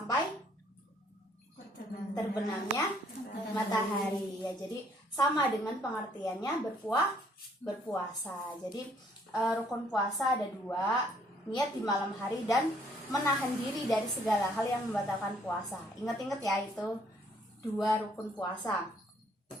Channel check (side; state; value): both; normal; correlation 0.64